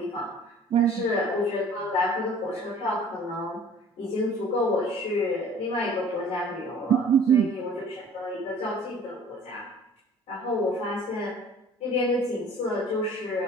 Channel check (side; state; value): both; normal; correlation 0.50